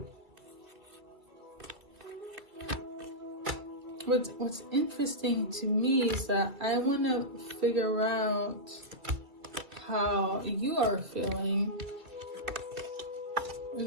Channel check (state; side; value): late; left; 2.3 ms